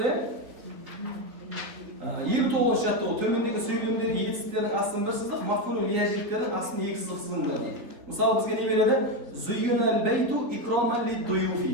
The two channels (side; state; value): left; late; 4.1 ms